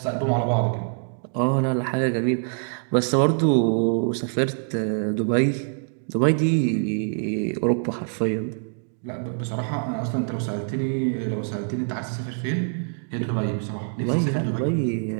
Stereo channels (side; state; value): left; silent; 62 dB below the other